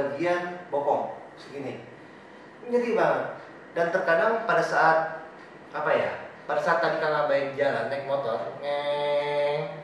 bokong segini, nyeri banget. Dan terkadang pada saat apa ya, pada saat tadi Kang Abai jalan naik motor,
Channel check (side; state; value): both; identical; correlation 1.00